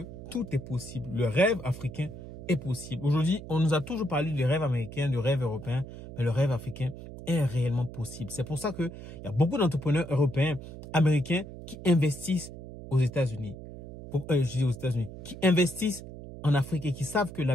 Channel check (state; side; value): noise; right; hum, 13 dB below the sound